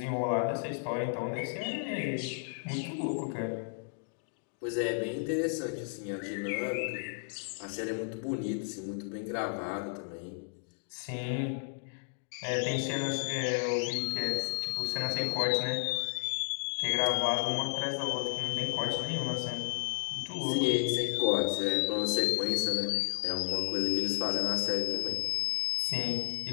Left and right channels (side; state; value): right; silent; digital silence